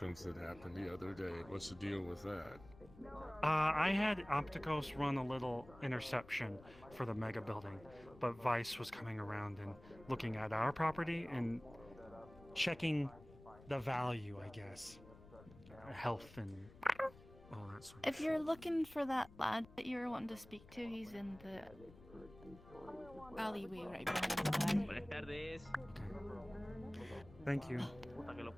that happened the other day. What's the deal with that? I had Opticos run a little interception for the mega building, but Vice was coming around and looking at our property and checking the value, I guess. Health and all that sort of If you're looking for that lad that you were wanting to speak to, he's in the alleyway right behind the bar. Buenas tardes. Thank you. Puta que lo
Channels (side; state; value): left; noise; rumble, 20 dB below the sound